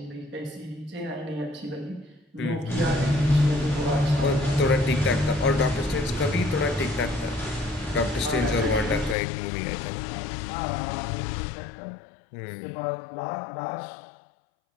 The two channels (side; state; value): right; drops out; at 9.2 s